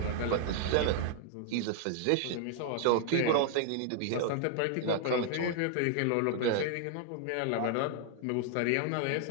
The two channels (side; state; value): both; different; correlation 0.00